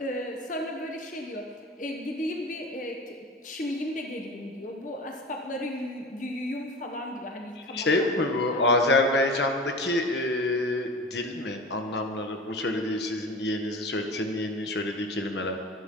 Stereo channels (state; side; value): normal; both; correlation 0.34